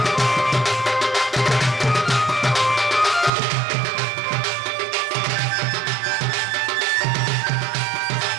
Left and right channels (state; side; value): drops out; left; at 3.3 s